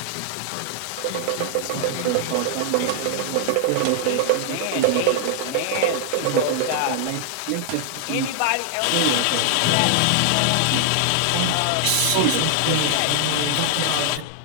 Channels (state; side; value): different; both; correlation 0.00